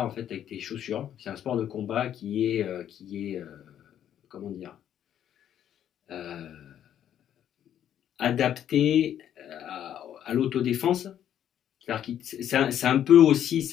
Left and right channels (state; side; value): quieter; right; 10.3 dB